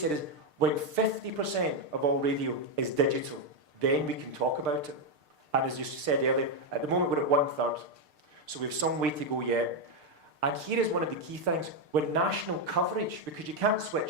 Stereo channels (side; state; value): left; late; 6.6 ms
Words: is, when 50% of all radio is digital, then we can talk about it. And as you said earlier, at the moment we're at 1/3. So we have some way to go yet. And here is one of the key things. When national coverage, because you can't